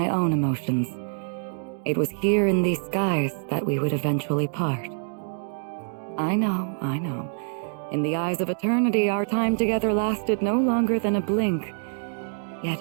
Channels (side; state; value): left; silent; digital silence